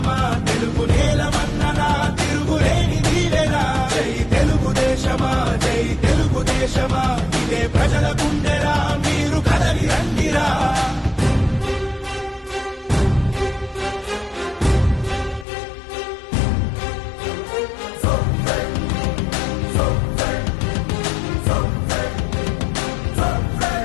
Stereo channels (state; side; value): drops out; right; at 15.5 s